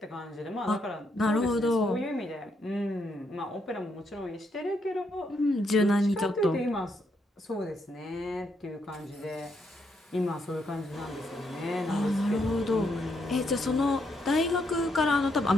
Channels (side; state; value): both; normal; correlation 0.77